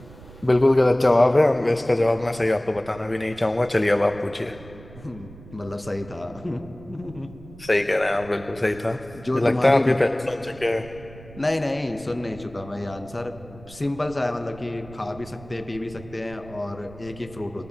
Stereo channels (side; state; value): right; noise; rumble, 18 dB below the sound